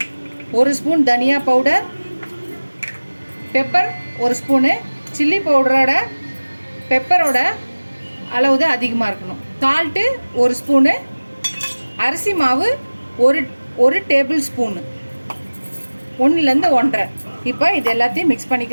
1 ஸ்பூன் தனியா பவுடர், பெப்பர் 1 ஸ்பூனு. சில்லி பவுடரோட பெப்பரோட அளவு தான் அதிகமாக இருக்கணும். சால்ட்டு 1 ஸ்பூனு, அரிசி மாவு ஒரு டேபிள் ஸ்பூனு, 1லேருந்து 1.5. இப்போ இது எல்லாத்தையும் மிக்ஸ்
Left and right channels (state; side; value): inverted; both; correlation -1.00